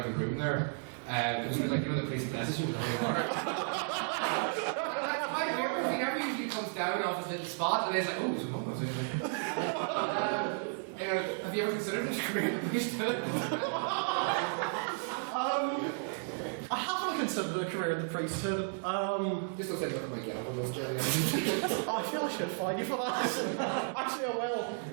the room there. It was like, the priest blesses you with holy water. He never usually comes down off his little spot and he's like, oh, there's a mum. Have you ever considered this career in the priesthood? I haven't considered a career in the priesthood. Just don't say look at my gavel, those Jerry. I feel I should fine you for that. Actually, I will.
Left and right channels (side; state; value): left; silent; 55 dB below the other